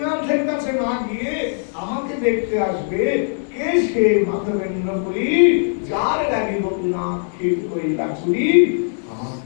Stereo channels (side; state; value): right; silent; 65 dB below the other